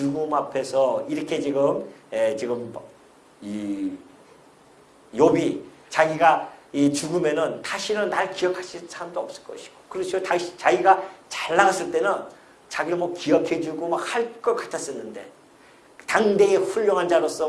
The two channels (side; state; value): both; identical; correlation 1.00